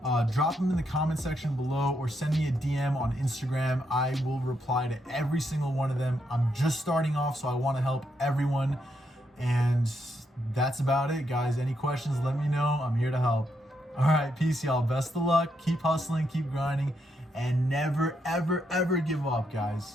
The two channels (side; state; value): both; normal; correlation 0.79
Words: drop them in the comment section below or send me a DM on Instagram. I will reply to every single one of them. I'm just starting off, so I want to help everyone. And that's about it, guys. Any questions, let me know. I'm here to help. All right, peace, y'all. Best of luck. Keep hustling, keep grinding, and never, ever, ever give up,